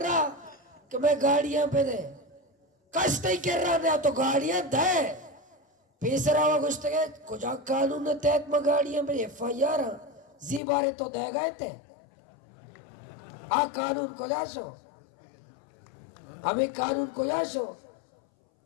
कि मैं गाड़ियां पे दे कस तय कर रहा नहीं तो गाड़ियां दे पेसरा हुआ कुछ तक कुछ कानून तहत में गाड़ियां पे FIR जी बारे तो दे गए थे आ कानून को जासो हमें कानून को जासो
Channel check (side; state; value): right; drops out; at 10.6 s